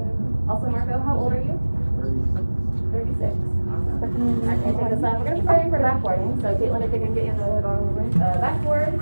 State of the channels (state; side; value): inverted; both; correlation -1.00